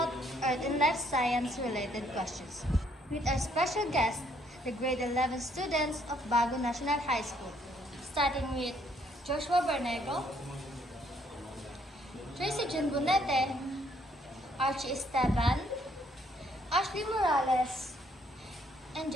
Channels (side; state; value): both; normal; correlation 0.67